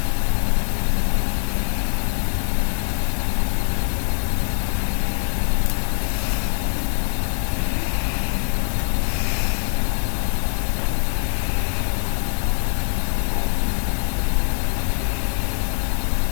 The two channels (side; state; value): right; silent; digital silence